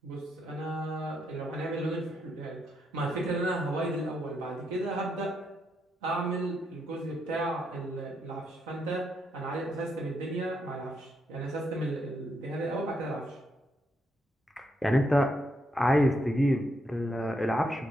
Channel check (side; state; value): both; normal; correlation 0.78